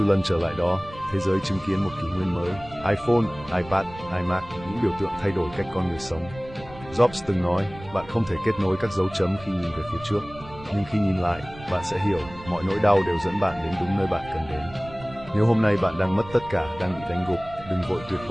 lần trở lại đó, thế giới chứng kiến một kỷ nguyên mới. iPhone, iPad, iMac, những biểu tượng thay đổi cách con người sống. Jobs từng nói, bạn không thể kết nối các dấu chấm khi nhìn về phía trước. Nhưng khi nhìn lại, bạn sẽ hiểu, mọi nỗi đau đều dẫn bạn đến đúng nơi bạn cần đến. Nếu hôm nay bạn đang mất tất cả, đang bị đánh gục, đừng vội tuyệt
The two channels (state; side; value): noise; right; rumble, 17 dB below the sound